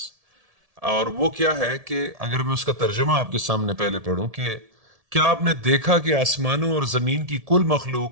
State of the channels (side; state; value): left; late; 1.7 ms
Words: اور وہ کیا ہے کہ اگر میں اس کا ترجمہ آپ کے سامنے پہلے پڑھوں کہ کیا آپ نے دیکھا کہ آسمانوں اور زمین کی کل